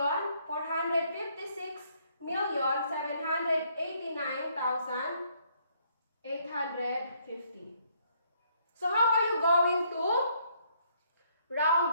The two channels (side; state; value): both; inverted; correlation -0.68